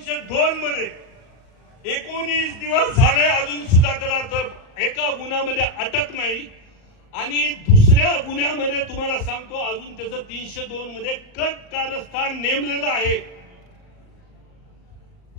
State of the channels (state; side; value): late; right; 38 ms